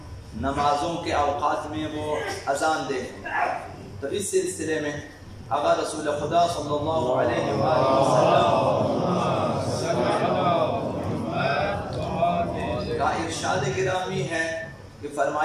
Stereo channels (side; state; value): both; identical; correlation 1.00